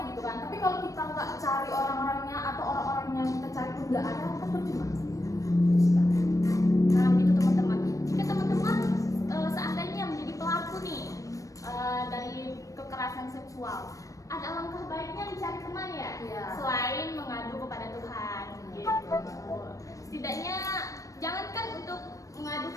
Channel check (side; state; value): right; late; 0.16 ms